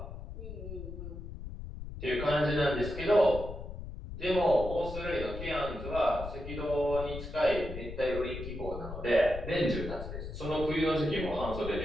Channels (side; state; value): left; noise; rumble, 9 dB below the sound